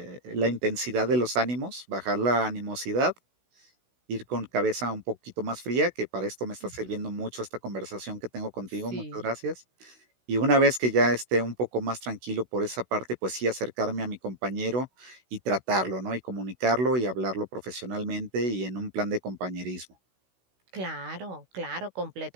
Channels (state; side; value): late; left; 16 ms